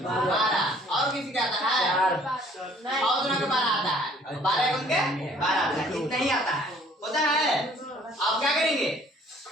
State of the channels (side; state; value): both; normal; correlation 0.57